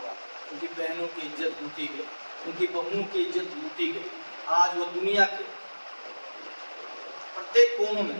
उनकी बहनों की इज्जत लूटी गई, उनकी बहुओं की इज्जत लूटी गई। आज वो दुनिया के प्रत्येक कोनों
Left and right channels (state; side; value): inverted; both; correlation -1.00